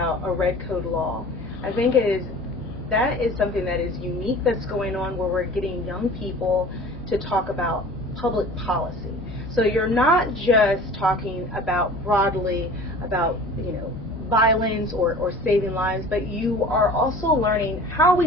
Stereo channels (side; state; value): both; normal; correlation 0.42